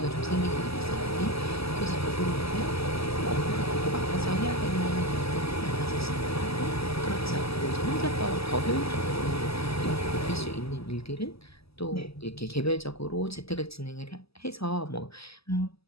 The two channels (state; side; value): late; right; 0.77 ms